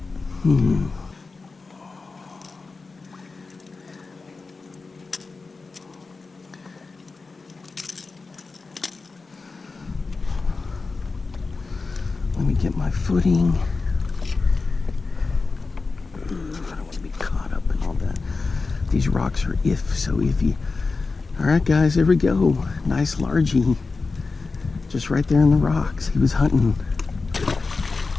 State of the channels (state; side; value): quieter; right; 4.1 dB